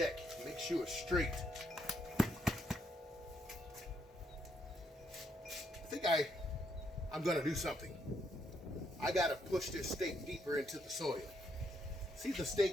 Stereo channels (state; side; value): normal; both; correlation 0.75